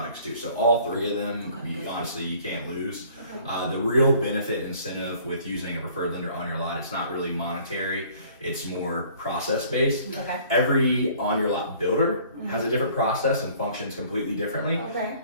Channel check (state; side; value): inverted; both; correlation -0.54